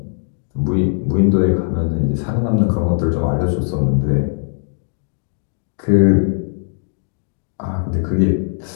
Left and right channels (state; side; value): silent; right; digital silence